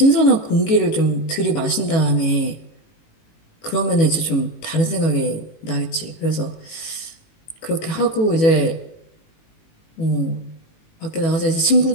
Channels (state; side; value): late; right; 18 ms